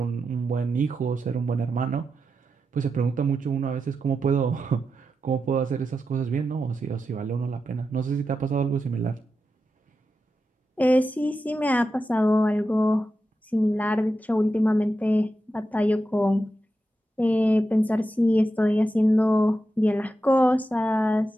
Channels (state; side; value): normal; both; correlation 0.89